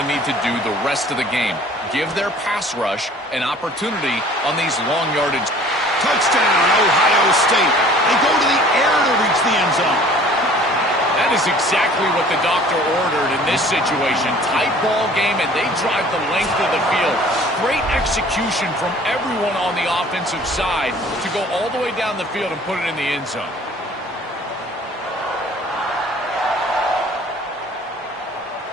need to do the rest of the game. Give their pass rush an opportunity on these long yardage. Touchdown, Ohio State. They go to the air to reach the end zone. That is exactly what the doctor ordered in this situation. Tight ball game, and they drive the length of the field. Great execution from everyone on the offensive side to go all the way down the field and put it in the end zone.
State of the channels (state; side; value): normal; both; correlation 0.51